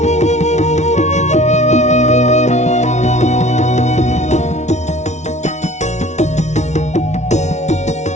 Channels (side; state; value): right; late; 0.33 ms